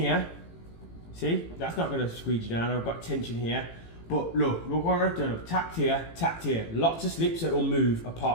See, that's not going to squeeze you down. I've got tension here. But look what I've done. I've tacked here. Lots of slips that will move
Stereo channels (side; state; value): right; late; 18 ms